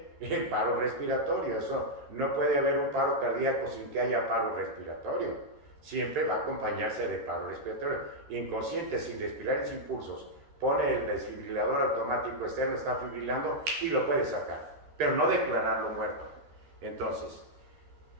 en paro respiratorio. Eso no puede haber un paro cardíaco sin que haya paro respiratorio. Siempre va a acompañarse de paro respiratorio. Inconsciente, sin respirar y sin pulsos, pone el desfibrilador automático externo, está fibrilando y lo puede sacar, pero no declararlo muerto. Entonces,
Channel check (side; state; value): left; late; 13 ms